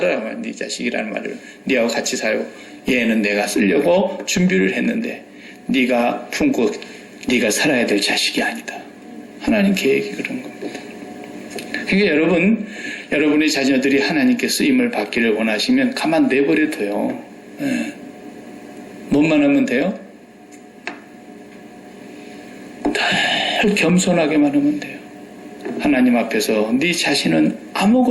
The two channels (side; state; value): both; identical; correlation 1.00